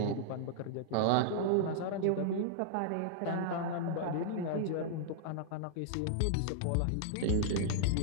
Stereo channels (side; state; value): both; different; correlation -0.01